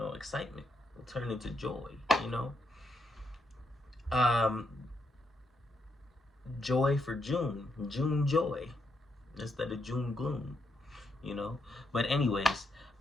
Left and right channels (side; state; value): both; normal; correlation 0.79